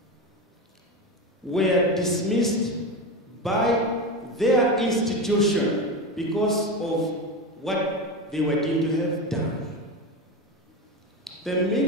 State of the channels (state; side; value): normal; both; correlation 0.20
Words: were dismissed by their institution because of what they were deemed to have done. The